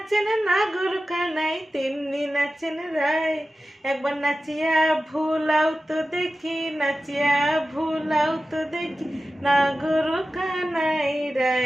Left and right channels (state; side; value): normal; both; correlation 0.94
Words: নাগর কানাই তেমনি নাচেন রায়। একবার নাচিয়া ভুলাও তো দেখি, নাচিয়া ভুলাও তো দেখি, নাগর কানাই